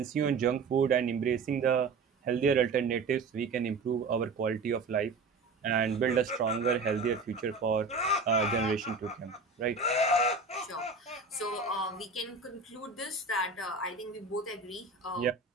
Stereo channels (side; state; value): left; quieter; 4.0 dB